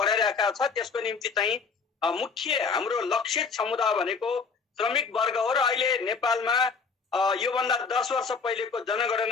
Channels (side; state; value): right; quieter; 5.2 dB